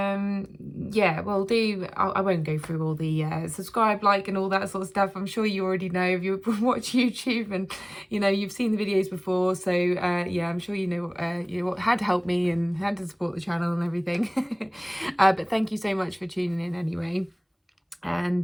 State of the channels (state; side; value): identical; both; correlation 1.00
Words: well, I won't go through all the subscribe, like, and all that sort of stuff. I'm sure you already know if you watch YouTube, and you've seen the videos before. So yeah, I'm sure you know how to help me and how to support the channel and everything. But thank you so much for tuning in anyway.